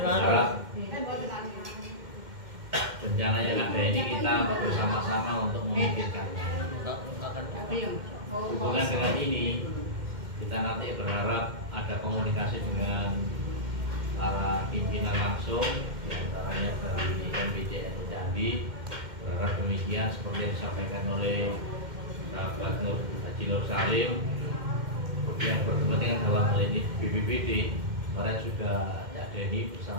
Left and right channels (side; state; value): left; late; 2.1 ms